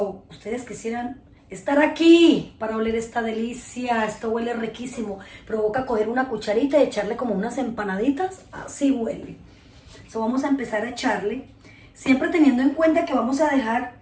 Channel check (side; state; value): both; identical; correlation 1.00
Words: Ustedes quisieran estar aquí para oler esta delicia. Esto huele riquísimo. Provoca coger una cucharita y echarle como unas empanaditas. Así huele. Vamos a empezar a echarle, siempre teniendo en cuenta que vamos a dejar